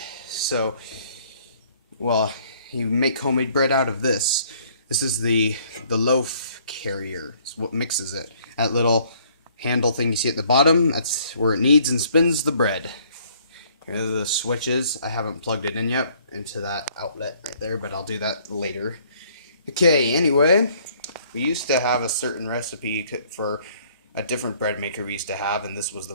So, well, you make homemade bread out of this. This is the loaf carrier. It's what mixes it. That little handle thing you see at the bottom, that's where it kneads and spins the bread. Here are the switches. I haven't plugged it in yet into that outlet right there, but I'll do that later. Okay, anyway, we used to have a certain recipe for a different bread maker we used to have, and this was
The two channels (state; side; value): inverted; both; correlation -0.61